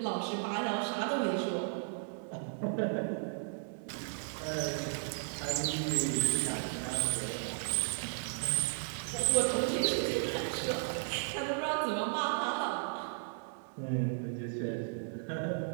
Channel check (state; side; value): silent; left; 55 dB below the other